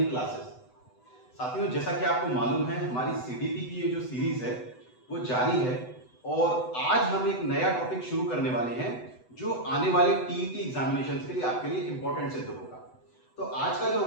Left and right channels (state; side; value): late; right; 8.0 ms